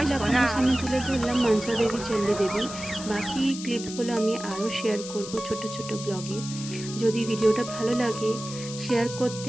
আপনাদের সামনে তুলে ধরলাম, মনসা দেবী, চণ্ডী দেবী। বাকি ক্লিপসগুলো আমি আরও শেয়ার করব ছোট ছোট ব্লগে। যদি ভিডিওটা ভালো লাগে শেয়ার করতে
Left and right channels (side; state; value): left; noise; hiss, 11 dB below the sound